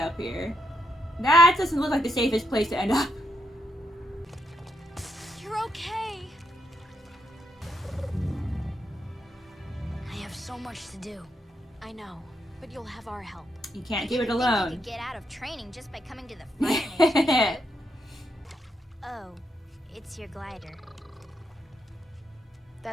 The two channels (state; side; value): normal; both; correlation 0.79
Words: here? That doesn't look like the safest place to end up. You're okay. I have so much to do. I know, but you'll have our help. You can't do it You alone. could get out of training just by coming to the Fire Nation. Oh, it's your glider.